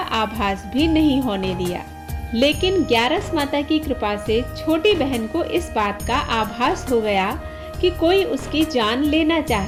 आभास भी नहीं होने दिया। लेकिन ग्यारस माता की कृपा से छोटी बहन को इस बात का आभास हो गया कि कोई उसकी जान लेना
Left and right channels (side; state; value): both; identical; correlation 1.00